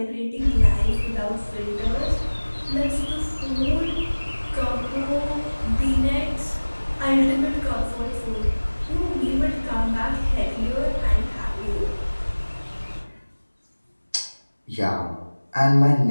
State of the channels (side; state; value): both; inverted; correlation -1.00